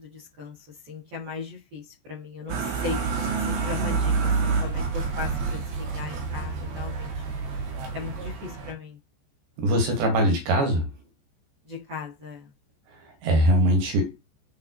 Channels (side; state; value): left; late; 14 ms